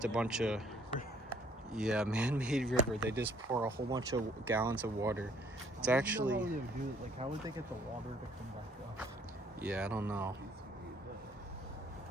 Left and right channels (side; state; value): both; normal; correlation 0.62